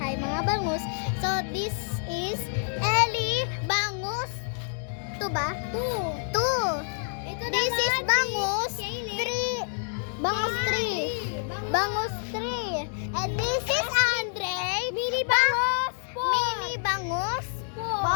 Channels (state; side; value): silent; right; digital silence